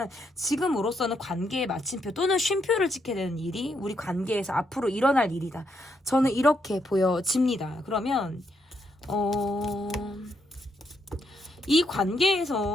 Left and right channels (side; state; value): both; normal; correlation 0.77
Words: 지금으로서는 관계의 마침표 또는 쉼표를 찍게 되는 일이 우리 관계에서 앞으로 일어날 일이다. 저는 이렇게 보여집니다. 그러면 이